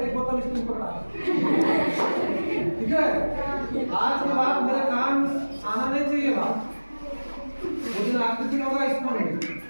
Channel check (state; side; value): inverted; both; correlation -1.00